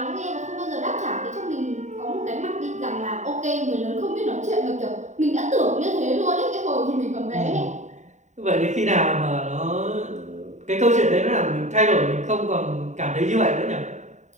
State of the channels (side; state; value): left; late; 0.34 ms